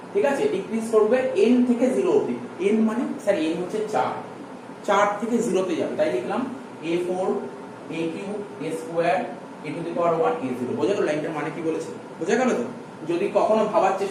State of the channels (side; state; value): both; identical; correlation 1.00